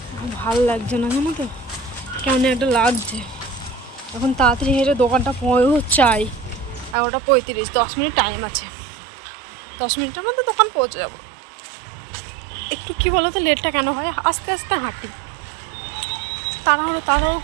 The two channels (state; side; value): drops out; left; at 7.0 s